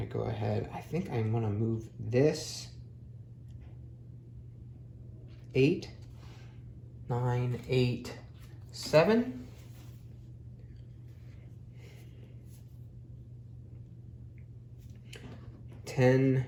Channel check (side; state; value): both; identical; correlation 1.00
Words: to go ahead. I think I'm going to move this 8, 9, 8, 7. If